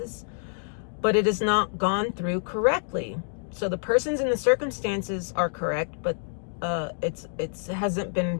but it is not gone through correctly. So the persons and the circumstances are correct, but it hasn't been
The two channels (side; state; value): right; silent; digital silence